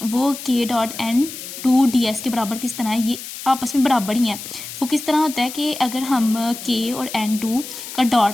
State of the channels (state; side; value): noise; left; hiss, 11 dB below the sound